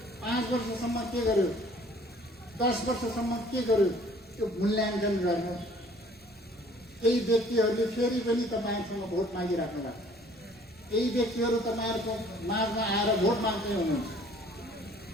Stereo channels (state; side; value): normal; both; correlation 0.56